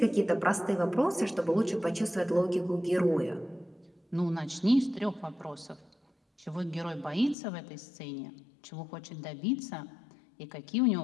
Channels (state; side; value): drops out; right; at 7.4 s